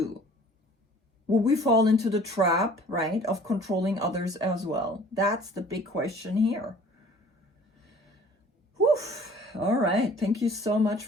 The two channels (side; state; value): both; normal; correlation 0.50